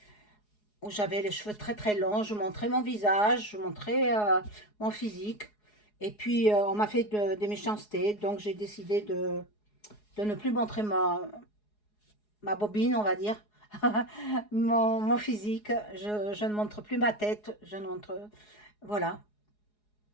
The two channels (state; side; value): late; right; 4.8 ms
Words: où j'avais les cheveux très longs, je montrais mon visage, je montrais mon physique. Et puis, on m'a fait des méchancetés, donc j'ai décidé de ne plus montrer ma bobine, on va dire, mon physique. Je ne montre plus ma tête, je ne montre... Voilà.